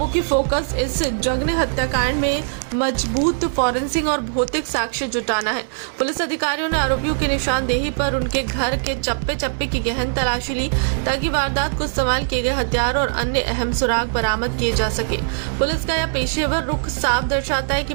फोकस इस जघन्य हत्याकांड में मजबूत फॉरेंसिक और भौतिक साक्ष्य जुटाना है। पुलिस अधिकारियों ने आरोपियों की निशानदेही पर उनके घर के चप्पे चप्पे की गहन तलाशी ली ताकि वारदात को इस्तेमाल किए गए हथियार और अन्य अहम सुराग बरामद किए जा सके। पुलिस का यह पेशेवर रुख साफ दर्शाता है कि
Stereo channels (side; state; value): left; silent; digital silence